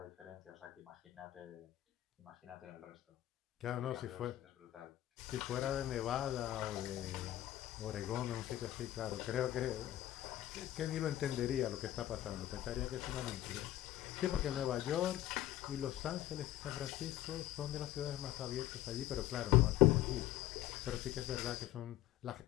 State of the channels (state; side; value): quieter; right; 13.8 dB